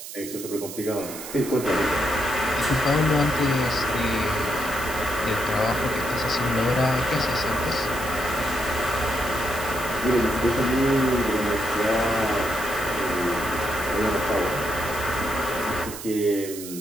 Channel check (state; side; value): noise; right; hiss, 11 dB below the sound